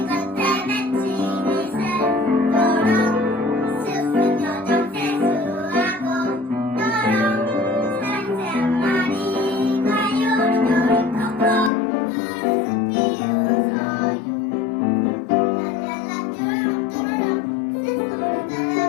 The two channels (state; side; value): drops out; right; at 11.7 s